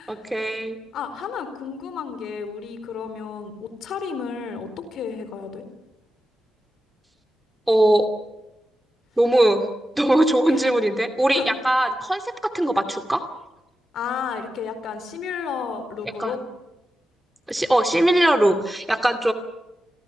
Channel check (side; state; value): both; normal; correlation 0.90